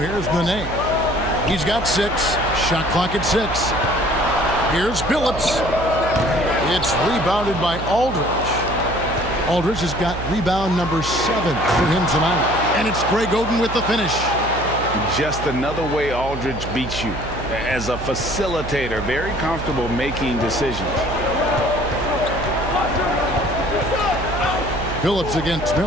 Nene. He's got 6. Shot clock at 6. Here's Billups. It's rebounded by Aldridge. Aldridge has got rebound number 7 for him tonight. And it's Greg Oden with the finish. Just another way Aldridge beats you. As a facilitator, very comfortable making decisions. Billups against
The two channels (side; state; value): right; noise; hum, 8 dB below the sound